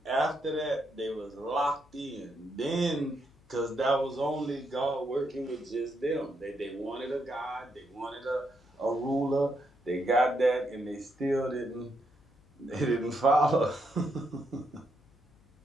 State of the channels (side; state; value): left; noise; hum, 29 dB below the sound